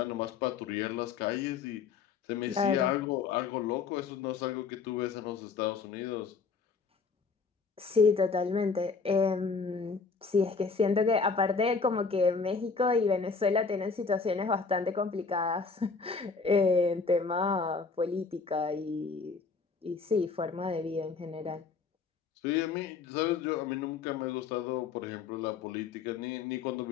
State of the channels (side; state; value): right; quieter; 5.0 dB